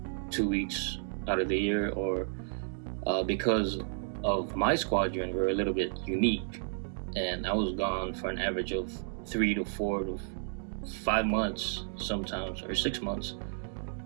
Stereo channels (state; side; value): silent; left; digital silence